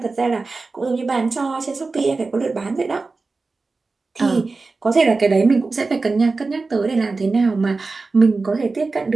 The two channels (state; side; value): quieter; left; 3.9 dB